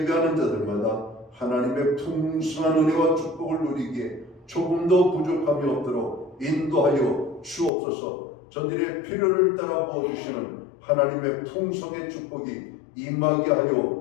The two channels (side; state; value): right; drops out; at 7.7 s